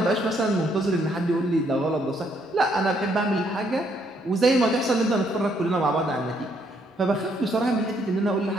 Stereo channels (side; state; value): both; normal; correlation 0.71